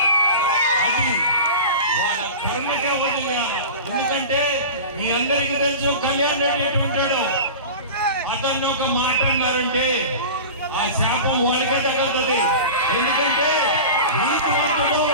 అది వాళ్ళ కర్మకే వదిలేయాలి. ఎందుకంటే మీ అందరికీ తెలుసు కళ్యాణ్ రెడ్డి ఎటు ఉంటాడు. అతన్ని ఒక మాట అన్నారంటే ఆ శాపం వాళ్ళకే తగ్గుతుంది. ఎందుకంటే నీతివంతుడు,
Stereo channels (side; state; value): both; inverted; correlation -0.32